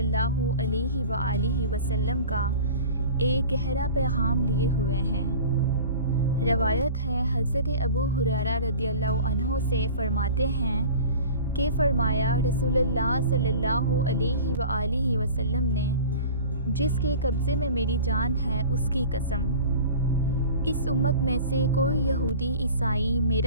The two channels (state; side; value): inverted; both; correlation -0.39